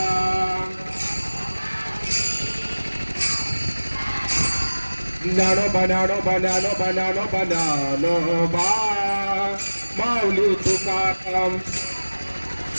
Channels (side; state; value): both; inverted; correlation -1.00